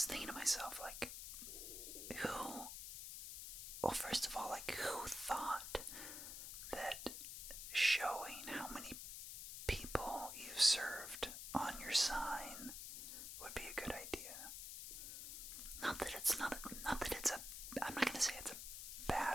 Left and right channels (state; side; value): noise; left; hiss, 7 dB below the sound